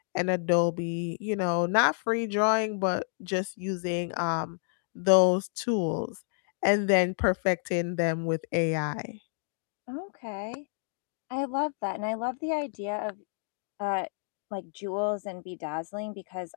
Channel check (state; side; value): silent; right; digital silence